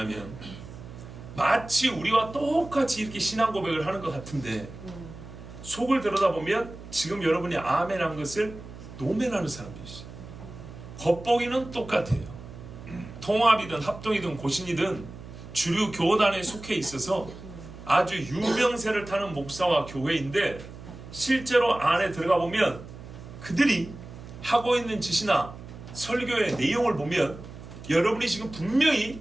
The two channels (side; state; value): right; noise; hum, 15 dB below the sound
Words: 마치 우리와 똑같이 이렇게 신앙 고백을 하는 것 같은데 속을 들여다보면 지금 여러분이 아멘 한 것을 노멘하는 사람들이 있어요. 겉보기는 똑같아요. 통합이든 합동이든 고신이든 주류 교단에 속해 있어서 아주 유명세를 타는 목사와 교회인데 실제로 안에 들어가 보면 그들이 하고 있는 짓이나 설교의 내용을 보면 여러분이 지금 분명히